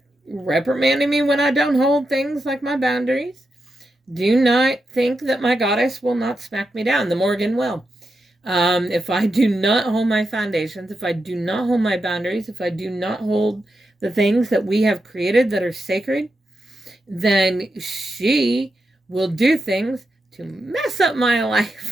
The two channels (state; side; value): normal; both; correlation 0.87